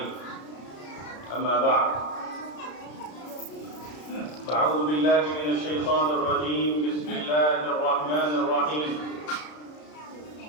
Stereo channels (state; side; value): late; right; 33 ms